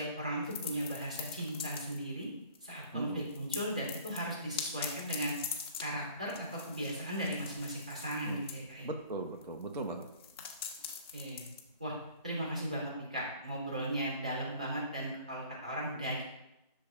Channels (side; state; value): both; inverted; correlation -0.50